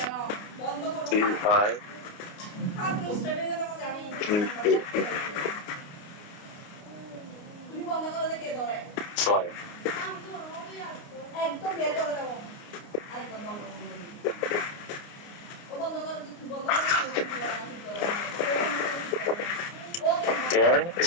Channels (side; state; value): right; late; 29 ms